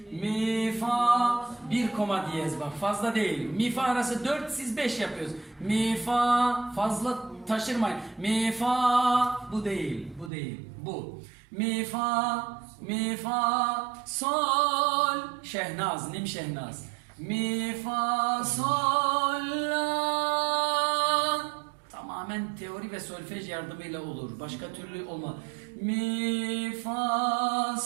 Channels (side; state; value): left; drops out; at 10.3 s